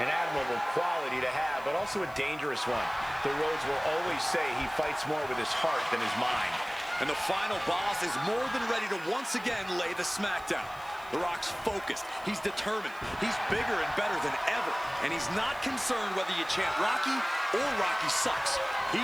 An admirable quality to have, but also a dangerous one. The Rhodes will always say he fights more with his heart than his mind. And the final boss is more than ready to once again lay the smackdown. The Rock's focused. He's determined. He's bigger and better than ever. And he's not concerned whether you chant Rocky or Rocky sucks.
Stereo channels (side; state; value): right; noise; hiss, 24 dB below the sound